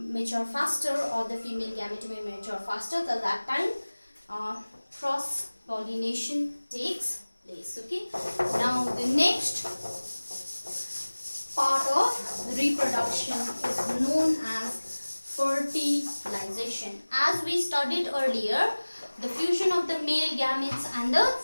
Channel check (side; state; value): both; inverted; correlation -1.00